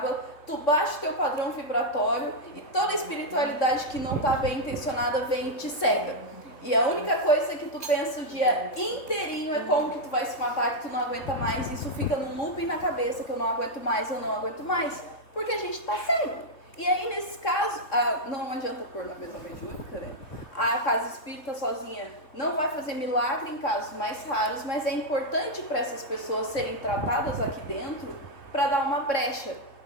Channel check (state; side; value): late; right; 3.7 ms